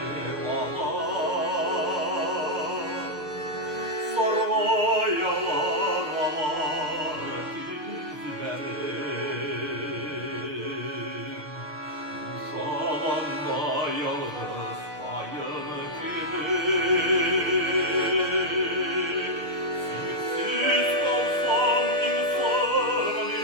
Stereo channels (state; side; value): late; left; 6.6 ms